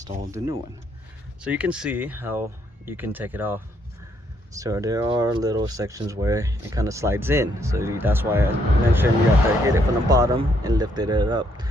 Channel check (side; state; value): both; normal; correlation 0.72